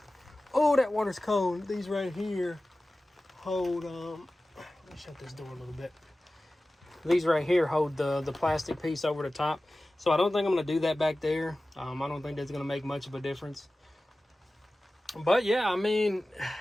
that water's cold. These right here hold, let me shut this door a little bit. These right here hold the plastic piece over the top. So I don't think I'm gonna do that back there. I don't think that's gonna make much of a difference. But yeah, I mean,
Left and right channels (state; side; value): normal; both; correlation 0.96